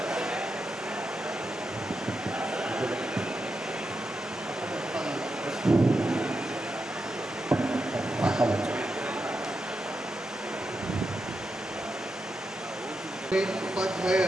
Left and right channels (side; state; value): both; normal; correlation 0.87